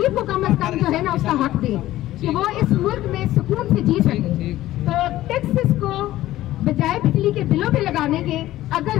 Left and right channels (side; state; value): right; quieter; 15.1 dB